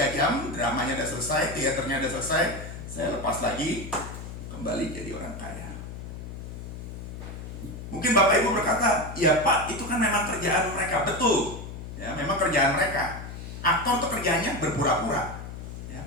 jam, dramanya udah selesai, teaternya udah selesai, saya lepas lagi, kembali jadi orang kaya. Mungkin Bapak Ibu berkata, ya Pak, itu kan memang kerjaan mereka. Betul, ya memang kerjaan mereka. Aktor itu kerjanya berpura-pura, ya,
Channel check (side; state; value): left; noise; hum, 10 dB below the sound